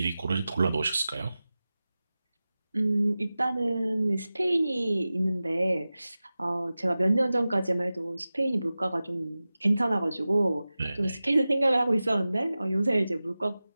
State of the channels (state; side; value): inverted; both; correlation -0.96